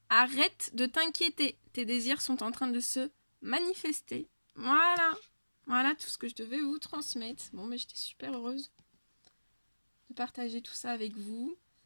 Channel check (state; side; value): inverted; both; correlation -1.00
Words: Arrête de t'inquiéter. Tes désirs sont en train de se manifester. Voilà. Voilà tout ce que je devais vous transmettre. Bon, mais j'étais super heureuse de partager tout ça avec vous.